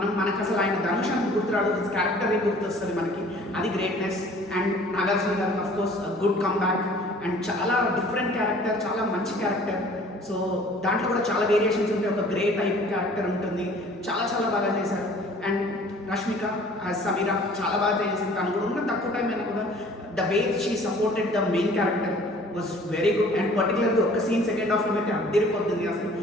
మనకు అసలు ఆయన ధనుష్ అని గుర్తురాడు, హిస్ క్యారెక్టర్ గుర్తొస్తుంది మనకి, అది గ్రేట్నెస్. అండ్ నాగార్జున గారు of course good come back, and చాలా డిఫరెంట్ క్యారెక్టర్, చాలా మంచి క్యారెక్టర్. సో దాంట్లో కూడా చాలా వేరియేషన్స్ ఉంటాయి, ఒక గ్రే టైప్ క్యారెక్టర్ ఉంటుంది, చాలా చాలా బాగా చేశారు. అండ్ రష్మిక సమీరా చాలా బాగా చేసింది. తను కూడా ఉన్న తక్కువ టైం అయినా కూడా the way she supported the main character was very good. And పర్టికులర్గా ఒక సీన్ సెకండ్ హాఫ్లో అయితే అద్దరిపోతుంది, అసలు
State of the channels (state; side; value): normal; both; correlation 0.51